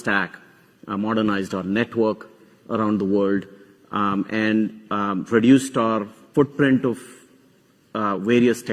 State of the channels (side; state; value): both; identical; correlation 1.00